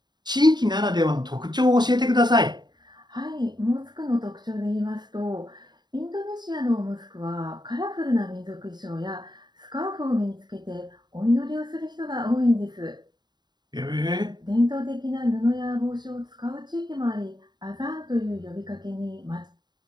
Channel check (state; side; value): late; left; 0.21 ms